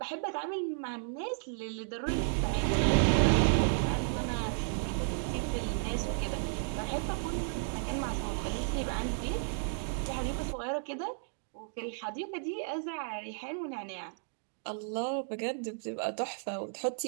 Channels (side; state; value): left; silent; digital silence